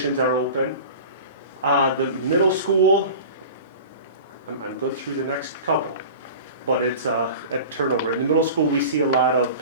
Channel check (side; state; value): both; inverted; correlation -0.37